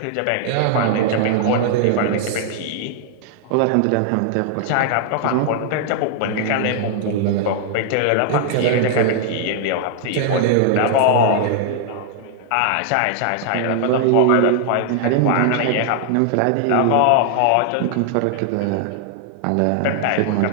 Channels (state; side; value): different; both; correlation -0.01